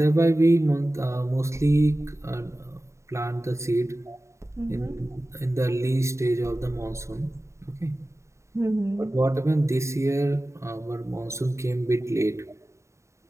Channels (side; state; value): left; late; 0.14 ms